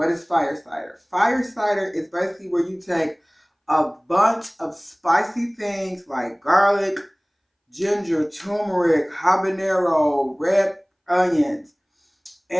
is fire cider? Fire cider is basically where you take a bunch of spicy things like garlic, ginger, turmeric, habanero, red onions,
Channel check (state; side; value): identical; both; correlation 1.00